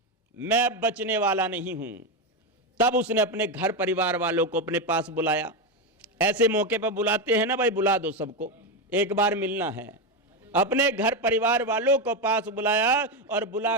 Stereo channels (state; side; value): normal; both; correlation 0.11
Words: मैं बचने वाला नहीं हूं, तब उसने अपने घर परिवार वालों को अपने पास बुलाया। ऐसे मौके पर बुलाते हैं ना भाई, बुला दो सबको, एक बार मिलना है। अपने घर परिवार वालों को पास बुलाया और बुला